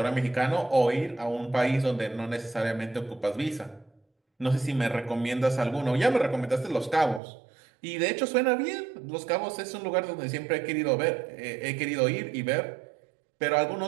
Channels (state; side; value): drops out; left; at 7.2 s